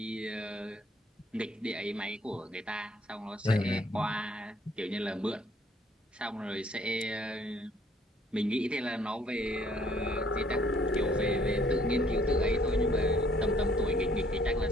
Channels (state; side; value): normal; both; correlation 0.62